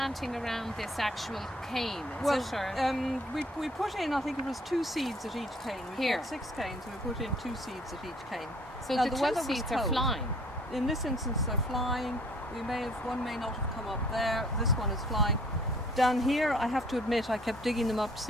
around this actual cane, is it? Or? We put in, I think it was 2 seeds at each cane. We Here. got 6 canes, and we put in 2 seeds at each cane. So now, the weather 2 was seeds are cold. flying? In this instance, they're flying. One may not have come up there. This one is flying. Down here, I have to admit, I kept digging them up to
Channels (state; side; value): normal; both; correlation 0.57